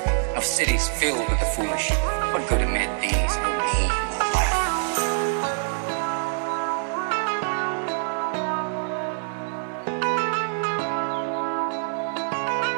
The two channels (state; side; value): silent; left; digital silence